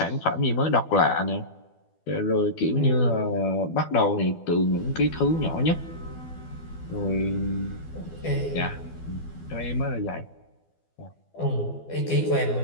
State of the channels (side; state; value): right; late; 12 ms